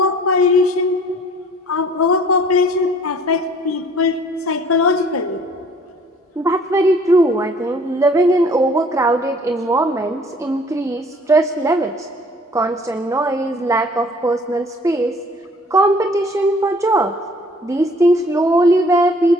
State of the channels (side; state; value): both; normal; correlation 0.54